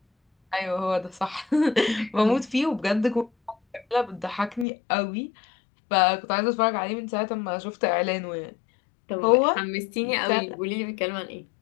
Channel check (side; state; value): right; drops out; at 4.7 s